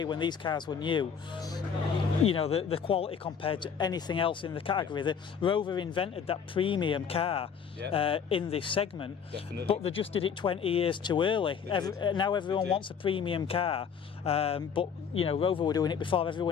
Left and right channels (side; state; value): right; quieter; 6.9 dB